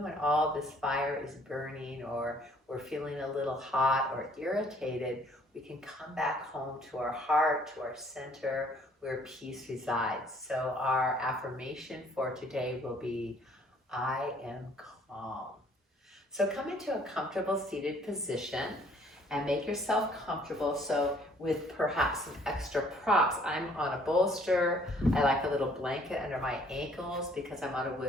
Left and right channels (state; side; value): normal; both; correlation 0.60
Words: when all this fire is burning or we're feeling a little hot or irritated, we can come back home to our heart, to our center, where peace resides. So our affirmation for today will be, I am calm. So come into a comfortable seated position and make yourself comfortable. So with perhaps some extra props, I'm on a bolster. I like a little blanket under my ankles because I'm on a